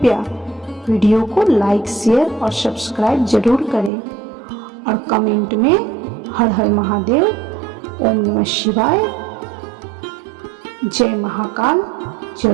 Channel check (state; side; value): drops out; left; at 3.9 s